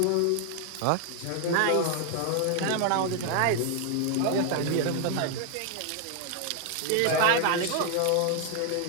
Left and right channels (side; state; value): both; different; correlation 0.00